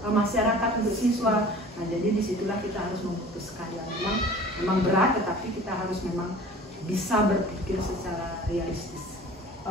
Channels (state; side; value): normal; both; correlation 0.44